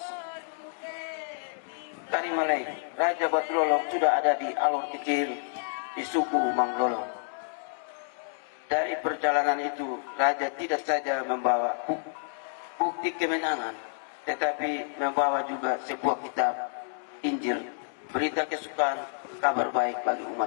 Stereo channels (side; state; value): right; silent; digital silence